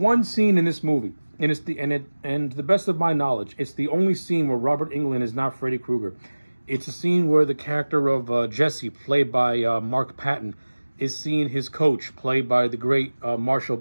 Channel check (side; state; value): both; inverted; correlation -1.00